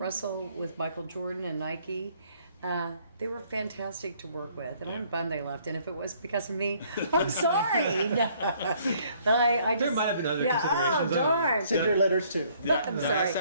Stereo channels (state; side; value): inverted; both; correlation -0.63